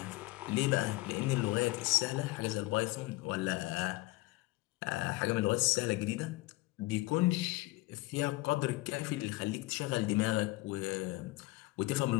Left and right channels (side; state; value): right; quieter; 20.6 dB